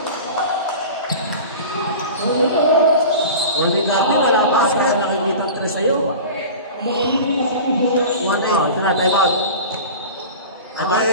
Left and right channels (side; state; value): both; inverted; correlation -0.35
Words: Holy God, wala pa ako nakikita ang presa sa'yo. 1-8. Ito na, time out.